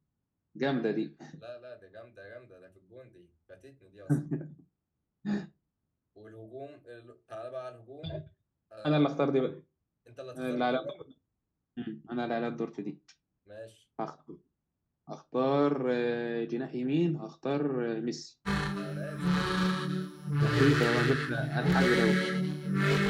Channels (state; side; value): identical; both; correlation 1.00